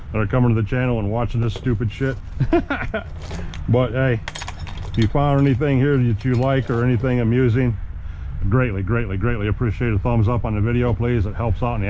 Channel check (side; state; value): both; identical; correlation 1.00